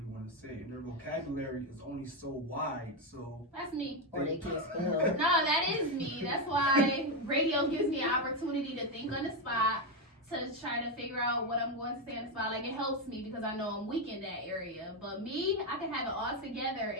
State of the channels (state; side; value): normal; both; correlation 0.07